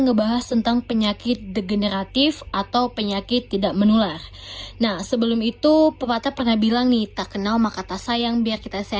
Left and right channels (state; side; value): identical; both; correlation 1.00